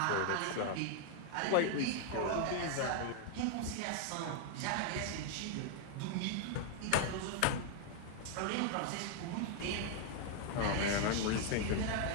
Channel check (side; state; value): both; different; correlation 0.00